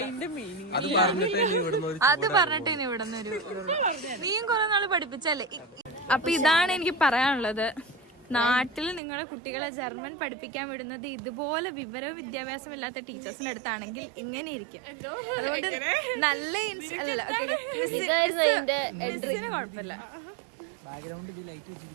മീനിങ്. അത് പറഞ്ഞിട്ട് ഇനി ഇവിടെ നിന്ന് നീയും കുറെ നാള് പഠിപ്പിച്ചല്ലേ. അപ്പൊ ഇതാണ് എനിക്ക് പറയാനുള്ളത്. നാട്ടിൽ നിങ്ങളുടെ കുട്ടികളെ ജർമ്മൻ പഠിപ്പിക്കാൻ വിടുന്നത് ഇതുപോലെ വിവരവും വിദ്യാഭ്യാസം ഇല്ലാത്ത ടീച്ചേഴ്സിന്റെ അടുത്താണെങ്കിൽ ഇങ്ങനെ ഇരിക്കും. അതുകൊണ്ട് നല്ല മിസ്സിന് കുഴപ്പമില്ല.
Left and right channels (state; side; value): drops out; left; at 9.0 s